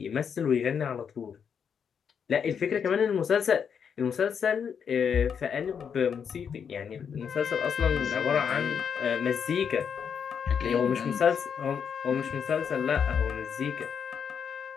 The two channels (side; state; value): right; quieter; 7.2 dB